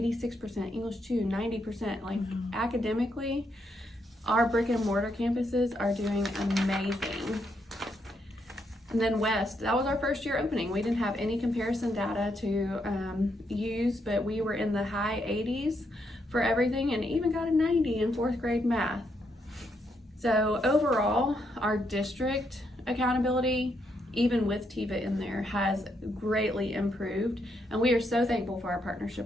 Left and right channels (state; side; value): normal; both; correlation 0.77